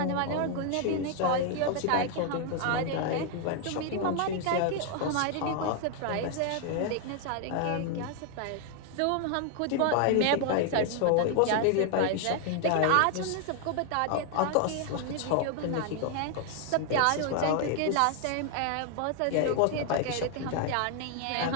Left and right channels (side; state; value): both; different; correlation 0.00